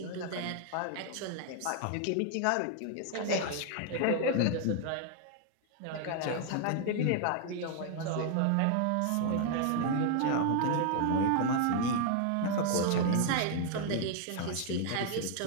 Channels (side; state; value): both; different; correlation 0.00